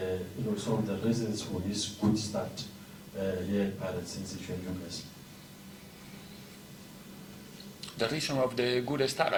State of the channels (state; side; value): identical; both; correlation 1.00